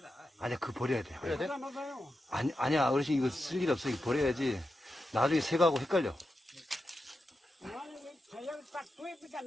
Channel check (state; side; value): normal; both; correlation 0.89